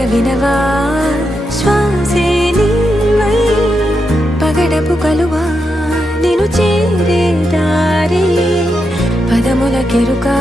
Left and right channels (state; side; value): normal; both; correlation 0.85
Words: వినవా శ్వాసే నీవై పగడపు కలువా నిను చేరే దారి పదముల కెరుకా